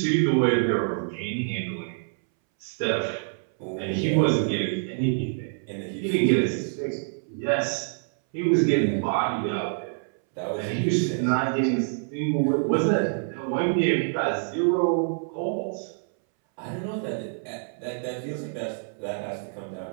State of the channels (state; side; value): silent; left; 61 dB below the other